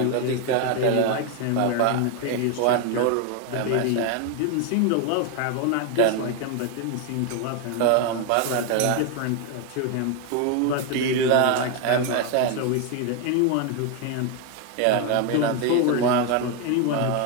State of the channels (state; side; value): different; both; correlation 0.01